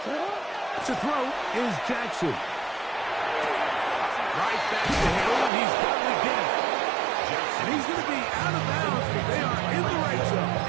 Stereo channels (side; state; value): left; drops out; at 5.5 s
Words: To throw is Jackson. Right back to Hill. He's got it again. And he's going to be out of bounds, but they are in the right zone,